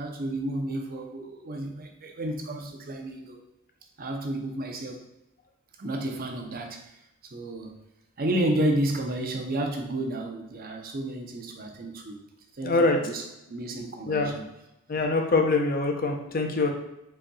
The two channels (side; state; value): both; normal; correlation 0.39